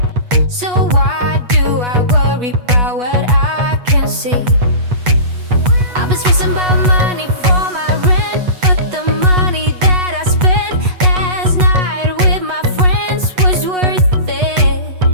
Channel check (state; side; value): late; left; 8.2 ms